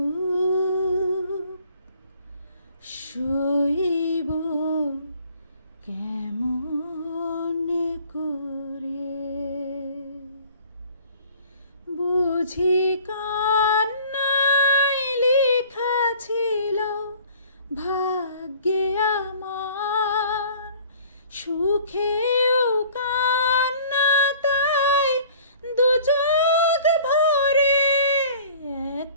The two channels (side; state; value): both; inverted; correlation -0.50